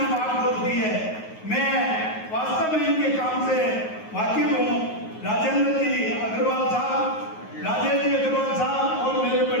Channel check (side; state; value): right; late; 9.4 ms